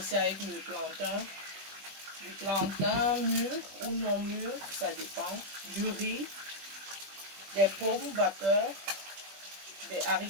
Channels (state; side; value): late; left; 20 ms